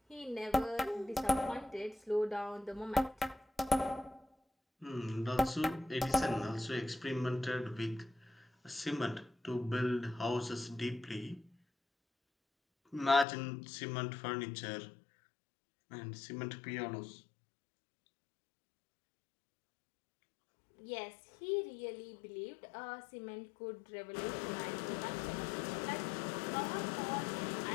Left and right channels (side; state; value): right; drops out; at 13.2 s